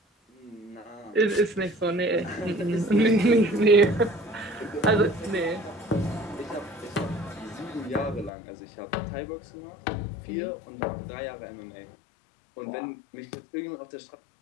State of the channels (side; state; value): right; drops out; at 8.3 s